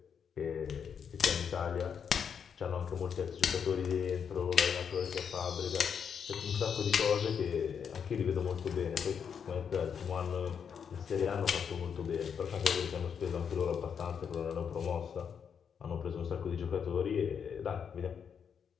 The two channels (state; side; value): quieter; right; 7.2 dB